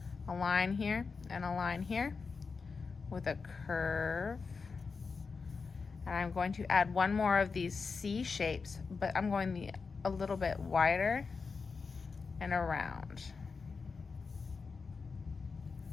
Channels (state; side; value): quieter; right; 4.9 dB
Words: a line here and a line here with a curve. And I'm going to add one more of these C shapes, but I'm going a little bit wider and around.